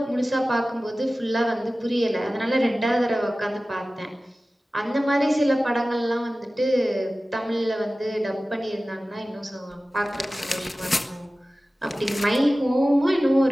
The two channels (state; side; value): normal; both; correlation 0.96